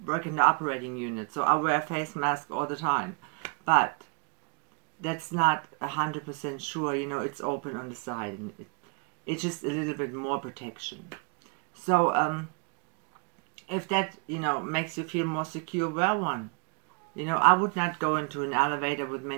work in the operating unit, so I wear a face mask all the time. But that's not 100% sure, it's open on the side, and it's just a little bit more protection. So if that, makes you feel more secure, wear one. I would not go into an elevator with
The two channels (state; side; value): quieter; left; 34.4 dB